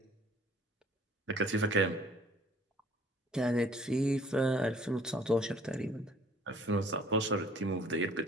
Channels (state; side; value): normal; both; correlation 0.56